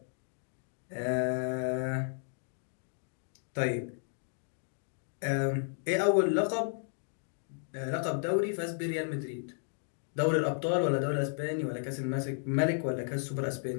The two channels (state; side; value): silent; right; digital silence